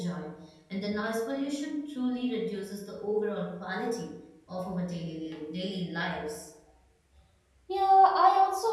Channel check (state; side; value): identical; both; correlation 1.00